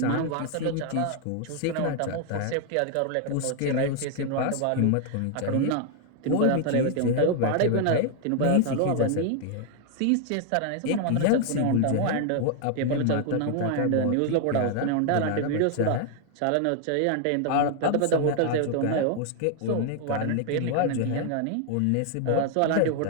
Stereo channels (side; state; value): both; different; correlation 0.00